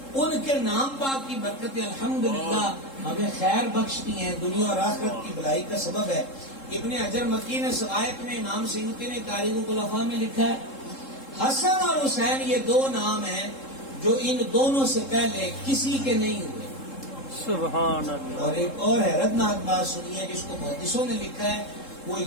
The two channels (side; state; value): right; late; 3.7 ms